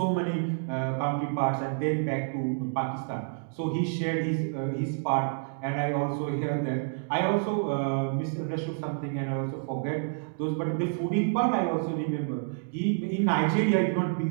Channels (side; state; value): left; silent; digital silence